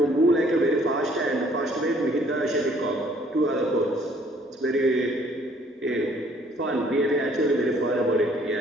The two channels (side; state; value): both; normal; correlation 0.61